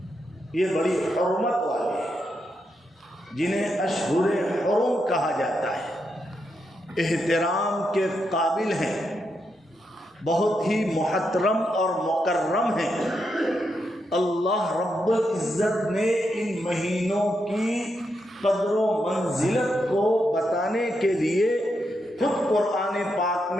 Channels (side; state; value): both; normal; correlation 0.83